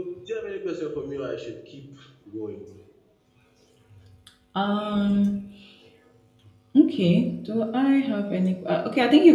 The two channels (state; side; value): identical; both; correlation 1.00